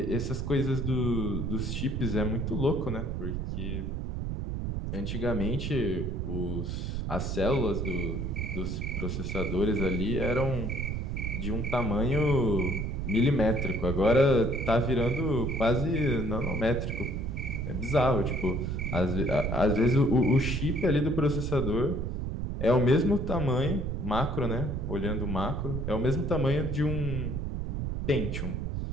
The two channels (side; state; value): right; noise; rumble, 2 dB below the sound